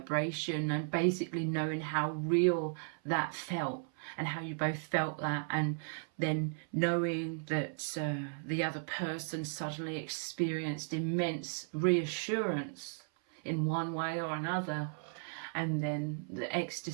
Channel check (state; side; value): silent; left; 54 dB below the other